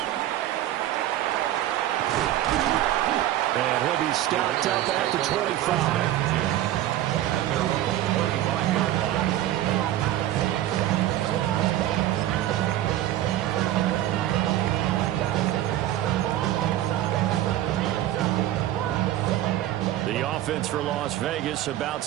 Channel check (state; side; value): quieter; left; 13.5 dB